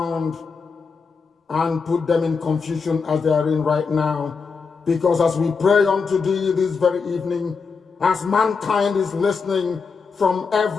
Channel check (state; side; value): quieter; right; 5.2 dB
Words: and put them in confusion as they are in right now. Because as we pray unto thee this very evening, as mankind is listening from